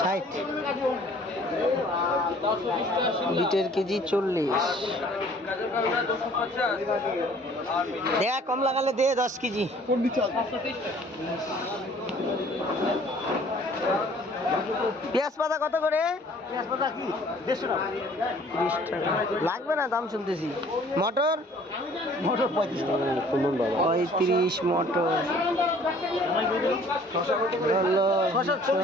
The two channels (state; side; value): normal; both; correlation 0.54